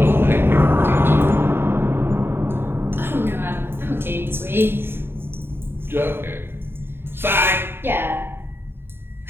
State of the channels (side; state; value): left; late; 0.11 ms